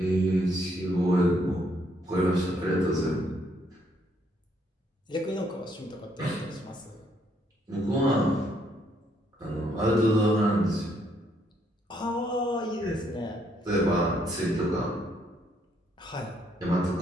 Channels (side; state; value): both; normal; correlation 0.71